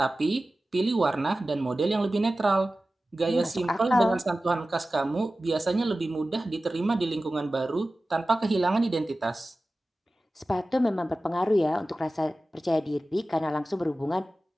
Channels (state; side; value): normal; both; correlation 0.96